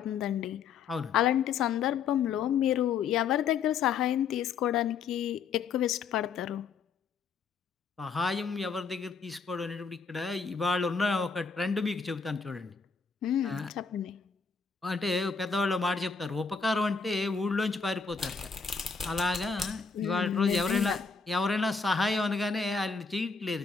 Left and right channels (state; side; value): quieter; right; 5.5 dB